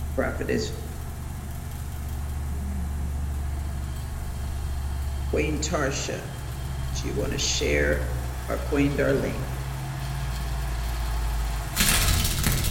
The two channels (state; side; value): identical; both; correlation 1.00